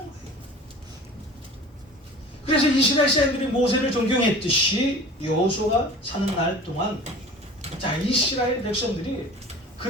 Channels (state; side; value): normal; both; correlation 0.40